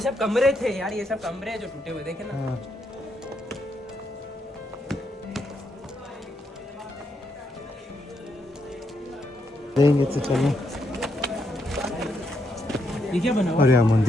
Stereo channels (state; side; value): normal; both; correlation 0.78